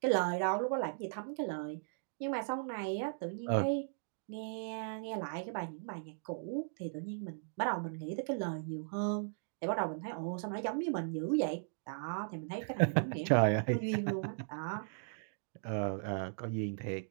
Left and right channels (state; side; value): silent; left; digital silence